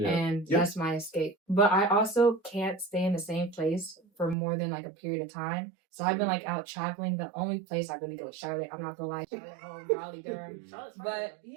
And that's my escape. But I also can't stay in the same place for more than like a period of time. So I've been like out traveling. The only place I really go is Charlotte. I'm not gonna lie, Charlotte home, Raleigh, Durham. But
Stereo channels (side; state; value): left; drops out; at 4.4 s